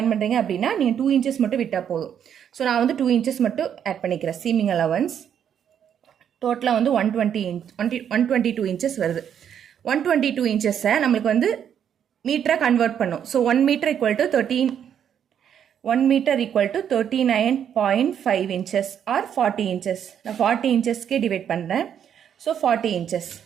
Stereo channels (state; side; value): quieter; left; 8.8 dB